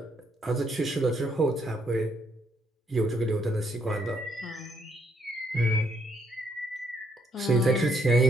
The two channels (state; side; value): normal; both; correlation 0.72